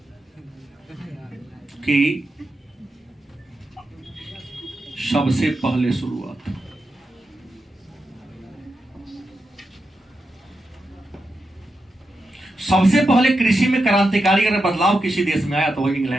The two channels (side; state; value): both; normal; correlation 0.87